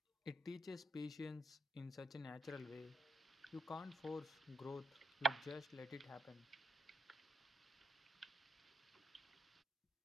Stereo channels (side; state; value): both; normal; correlation 0.74